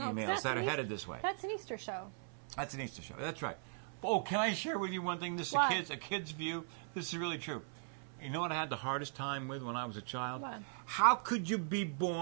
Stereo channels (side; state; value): left; silent; 52 dB below the other